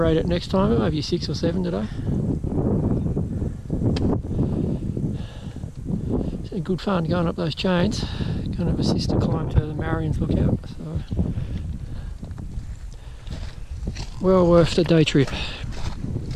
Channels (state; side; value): identical; both; correlation 1.00